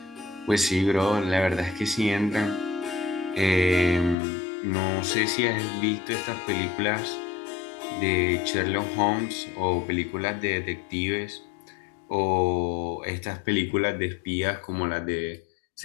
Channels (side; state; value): right; drops out; at 4.2 s